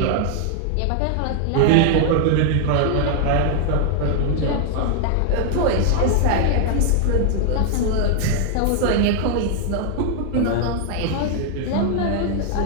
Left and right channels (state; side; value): different; both; correlation 0.00